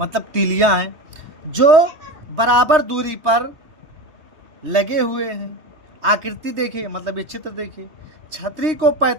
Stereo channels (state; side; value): late; left; 3.2 ms